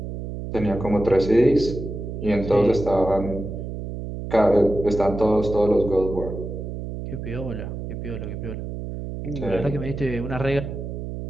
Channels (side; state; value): right; noise; hum, 7 dB below the sound